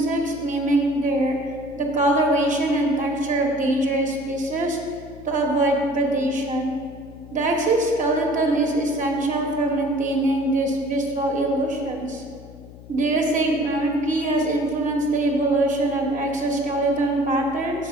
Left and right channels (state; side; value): noise; left; hum, 18 dB below the sound